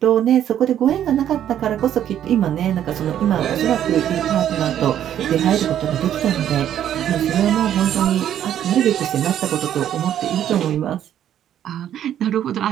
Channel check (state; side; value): quieter; left; 10.6 dB